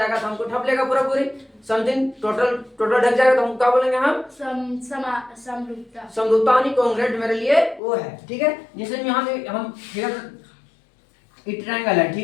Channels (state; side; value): drops out; right; at 7.8 s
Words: तो हमको ठप लेगा पूरा पूरी, समथिंग टोटल ढक जाएगा तो हम क्या बोलेंगे हम? समरूपता। समरूपता यानी कॉन्ग्रुएंट मेरे लिए वो है, ठीक है। जैसे यहाँ हम फिगर, ये ट्रायंगल है,